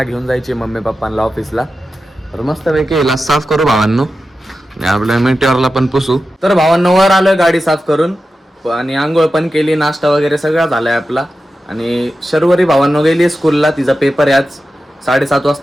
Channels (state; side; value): normal; both; correlation 0.92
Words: घेऊन जायची, मम्मी पप्पांना ऑफिसला. तर मस्त पैकी हिला साफ करू भावांनो आणि आपल्या मिटिओरला पण पुसू. तर भावांनो वर आलोय गाडी साफ करून आणि आंघोळ पण केली, नाश्ता वगैरे सगळा झालाय आपला. आणि शर्वरी भावांनो गेली स्कूलला, तिचा पेपर आहे आज 7:30